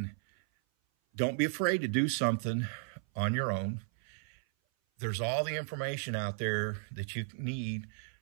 don't be afraid to do something on your own. There's all the information out there that you need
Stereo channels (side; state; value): left; silent; 55 dB below the other